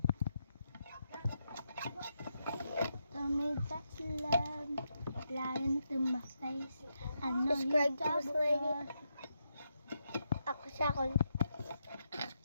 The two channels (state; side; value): inverted; both; correlation -0.83